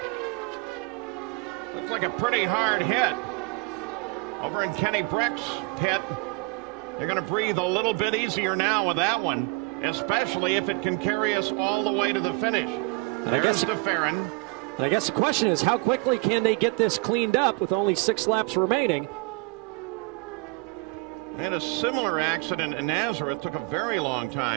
Looks like a pretty hard hit. Over in Kenny Breck's pit, they're going to breathe a little bit easier now with that one, especially if it can carry us all the way to the finish. And I guess DeFerrin. And I guess the question is, how quickly can they get this cleaned up with only 6 laps remaining? They had a similar accident in Nazareth. Took a very long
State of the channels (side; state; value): left; quieter; 26.7 dB